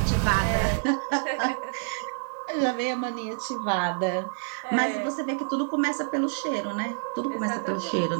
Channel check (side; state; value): left; silent; digital silence